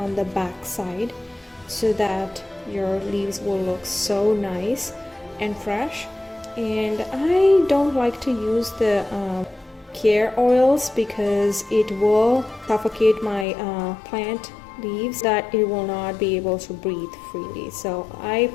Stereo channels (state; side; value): drops out; right; at 13.5 s